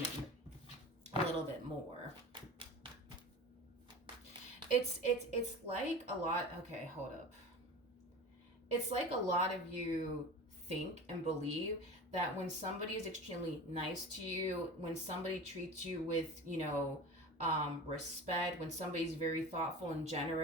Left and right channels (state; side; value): normal; both; correlation 0.33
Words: a little bit more. It's like a lot. Okay, hold up. It's like a lot of you think and believe that when somebody is extremely nice to you, when somebody treats you with, respect, when somebody's very thoughtful and